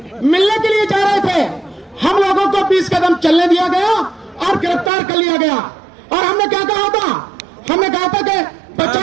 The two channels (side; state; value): left; drops out; at 4.9 s